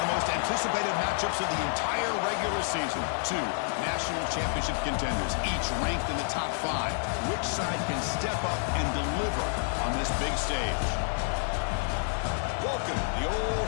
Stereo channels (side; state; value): right; silent; 58 dB below the other